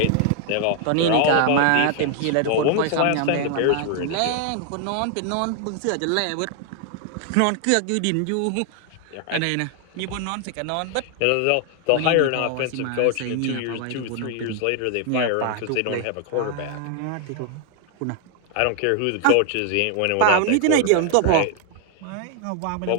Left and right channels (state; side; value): different; both; correlation 0.00